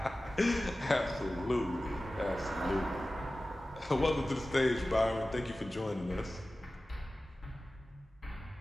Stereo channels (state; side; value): normal; both; correlation 0.96